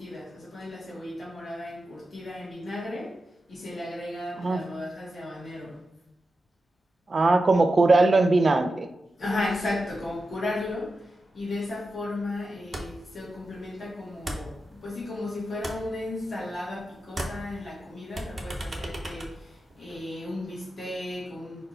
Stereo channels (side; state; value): both; normal; correlation 0.91